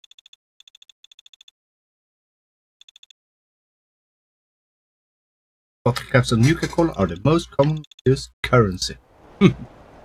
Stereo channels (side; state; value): both; identical; correlation 1.00